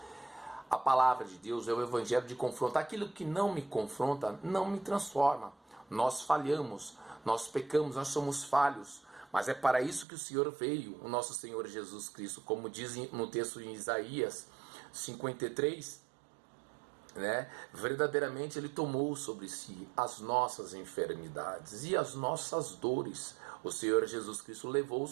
a palavra de Deus, é o evangelho de confronto. Aquilo que não me confronta não me transforma. Nós falhamos, nós pecamos, nós somos falhos, mas é para isso que o Senhor veio, o nosso Senhor Jesus Cristo, como diz no texto em Isaías 53, né? Verdadeiramente Ele tomou sobre si as nossas enfermidades e as nossas dores. O Senhor Jesus Cristo levou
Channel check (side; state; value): left; drops out; at 10.1 s